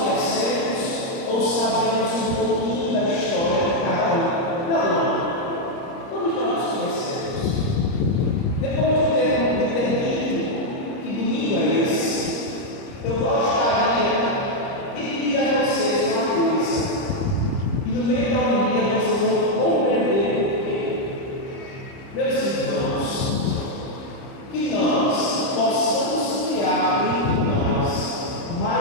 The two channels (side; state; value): right; late; 30 ms